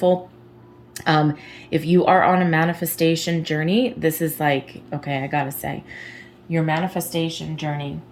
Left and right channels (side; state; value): both; identical; correlation 1.00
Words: If you are on a manifestation journey, this is like, okay, I gotta say, your manifestation journey,